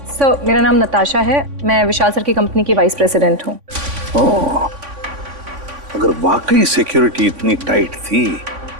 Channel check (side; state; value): left; late; 3.5 ms